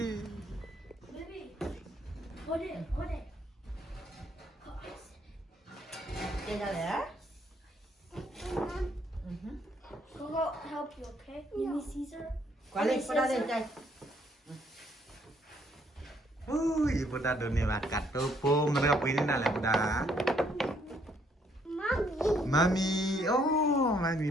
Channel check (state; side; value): normal; both; correlation 0.68